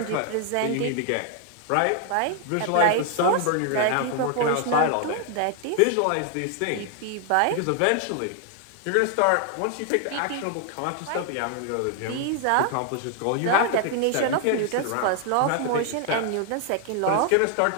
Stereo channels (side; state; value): both; different; correlation 0.00